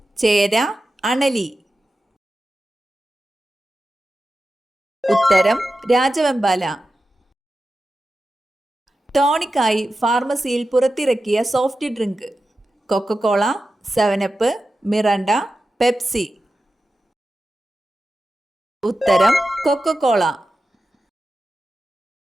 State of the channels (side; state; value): both; normal; correlation 0.92